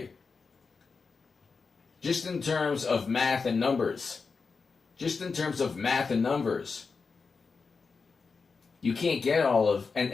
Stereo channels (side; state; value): right; quieter; 4.8 dB